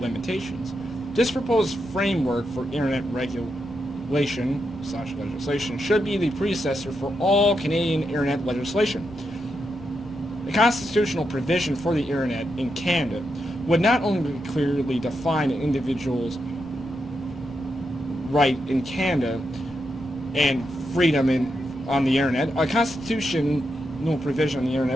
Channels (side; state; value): left; noise; rumble, 21 dB below the sound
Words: This proposed framework for internet regulation/legislation should be the predecessor for all Canadian internet legislation. The constitutional provision for the internet in Canada would not only clearly define an individual's right in Canada and freedom on the internet, a constitutional provision on the